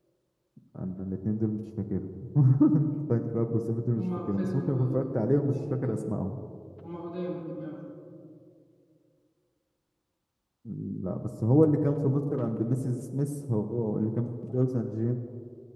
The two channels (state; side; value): identical; both; correlation 1.00